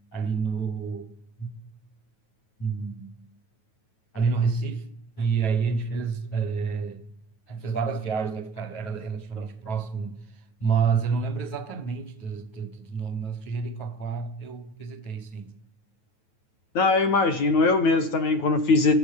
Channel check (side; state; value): right; late; 9.3 ms